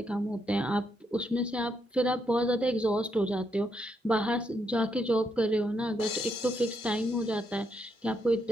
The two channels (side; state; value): both; normal; correlation 0.78